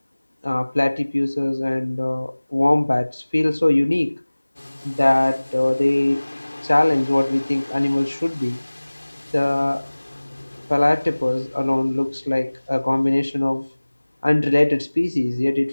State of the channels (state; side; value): inverted; both; correlation -1.00